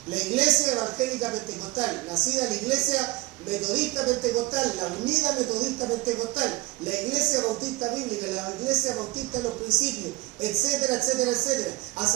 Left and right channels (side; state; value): left; quieter; 21.3 dB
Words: La iglesia evangélica pentecostal, nacida la iglesia metodista pentecostal, la unida metodista pentecostal, la iglesia bautista bíblica, la iglesia bautista de los principios, etcétera, etcétera, etcétera.